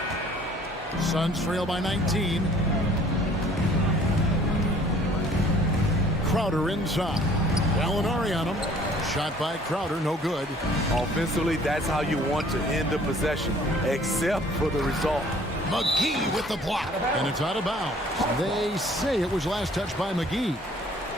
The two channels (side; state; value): both; normal; correlation 0.54